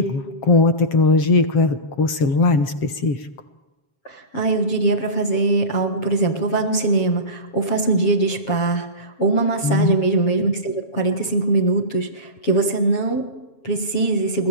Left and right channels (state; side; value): late; right; 7.3 ms